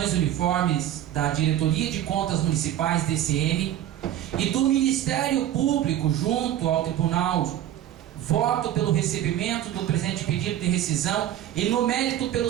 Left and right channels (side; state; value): left; quieter; 11.9 dB